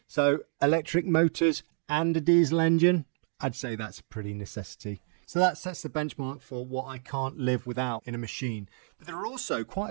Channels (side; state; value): left; silent; digital silence